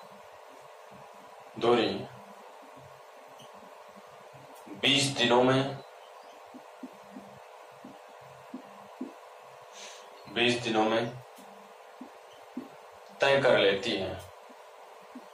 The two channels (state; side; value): identical; both; correlation 1.00